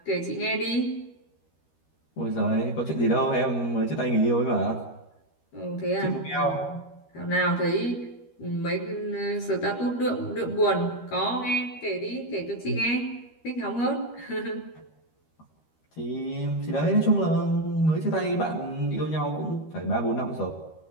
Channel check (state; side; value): late; right; 13 ms